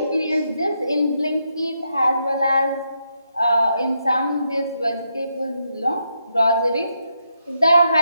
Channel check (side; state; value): both; inverted; correlation -0.81